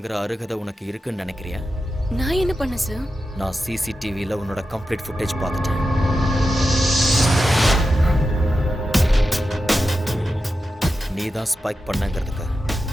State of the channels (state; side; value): normal; both; correlation 0.90